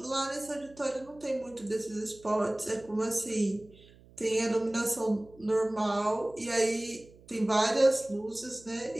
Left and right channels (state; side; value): noise; right; hum, 25 dB below the sound